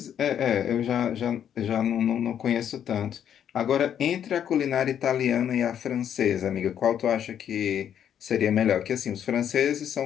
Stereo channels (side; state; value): right; quieter; 9.3 dB